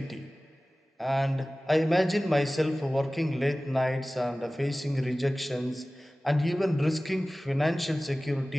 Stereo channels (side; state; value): both; normal; correlation 0.97